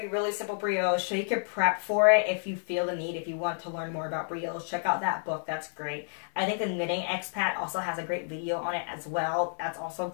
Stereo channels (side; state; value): right; silent; digital silence